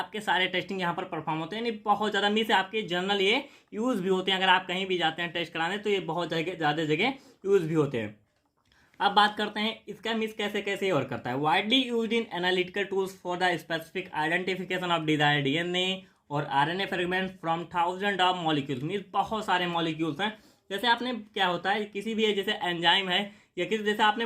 सारे टेस्टिंग यहाँ पर परफॉर्म होते हैं। नहीं बहुत ज़्यादा मीन्स आपके जनरल ये यूज़ भी होते हैं, अगर आप कहीं भी जाते हैं टेस्ट कराने तो ये बहुत ज़्यादा जगह यूज़ भी होते हैं। अब बात करते हैं इसका मीन्स कैसे कैसे वर्क करता है। Widely used in analytical tools for the specific identification of desired DNA और RNA fragment from thousand of molecules, means बहुत सारे मॉलिक्यूल्स हैं। जैसे आपने क्या होता है, किसी भी जैसे एंजाइम है या किसी, जैसे आपने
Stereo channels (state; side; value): identical; both; correlation 1.00